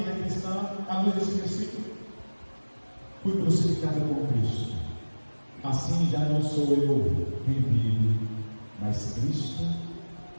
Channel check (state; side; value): inverted; both; correlation -1.00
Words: cristã, à luz desse versículo. Fui crucificado com Cristo, assim já não sou eu quem vive, mas Cristo